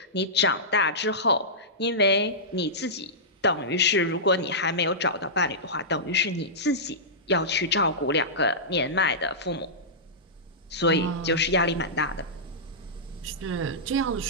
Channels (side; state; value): both; normal; correlation -0.15